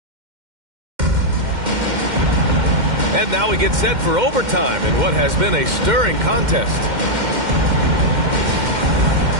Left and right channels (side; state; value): left; late; 2.1 ms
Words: And now we get set for overtime in what has been a stirring contest.